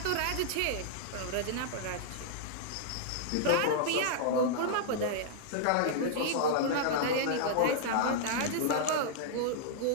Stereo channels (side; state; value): both; different; correlation -0.01